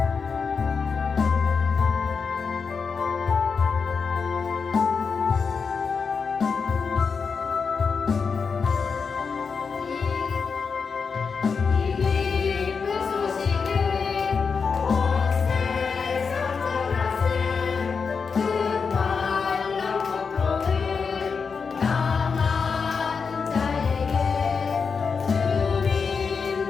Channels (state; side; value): quieter; right; 5.4 dB